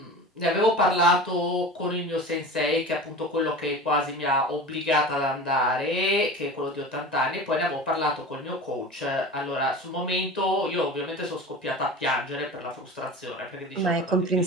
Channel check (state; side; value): normal; both; correlation 0.34